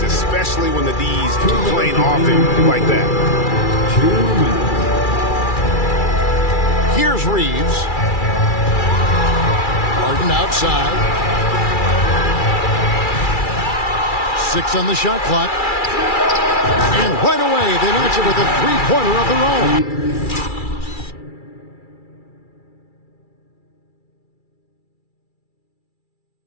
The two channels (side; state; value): right; late; 2.3 ms